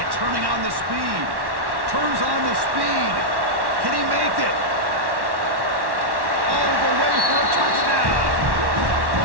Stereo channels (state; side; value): late; left; 1.1 ms